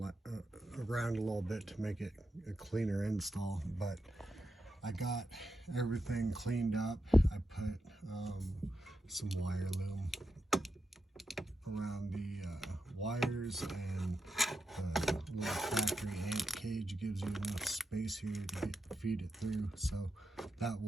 around a little bit to make it a cleaner install, but I got everything cleaned up. I put some wire loom around the wires, and the little factory amp cage gives you enough space here to feed it through, so that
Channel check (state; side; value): normal; both; correlation 0.87